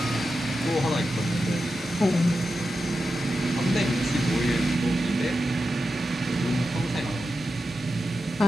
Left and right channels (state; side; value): normal; both; correlation 0.90